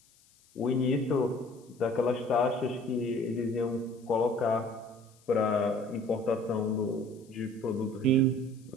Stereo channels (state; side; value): noise; left; hiss, 30 dB below the sound